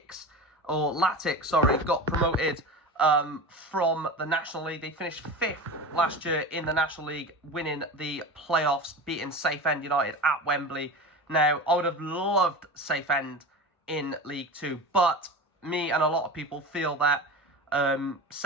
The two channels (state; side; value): normal; both; correlation 0.29